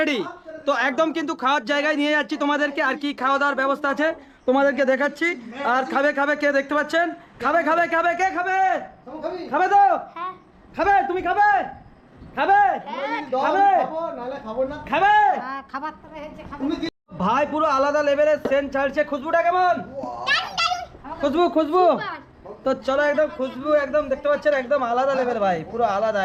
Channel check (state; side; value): identical; both; correlation 1.00